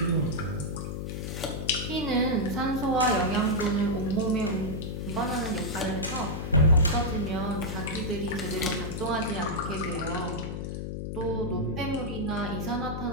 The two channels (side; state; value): left; noise; hum, 4 dB below the sound